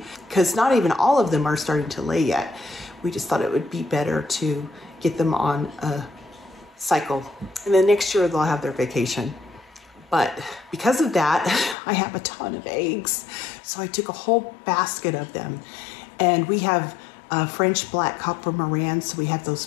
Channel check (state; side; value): drops out; right; at 11.8 s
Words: because not even all of them are starting to lay yet. We just thought it would be better to get them on a cycle, and then next year they'll have their vacation. But because of that, I have a ton of eggs. So I took a whole basket of them. And we have French black copper Morans, so we have those